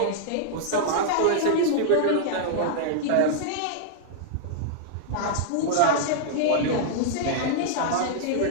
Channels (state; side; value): different; both; correlation -0.01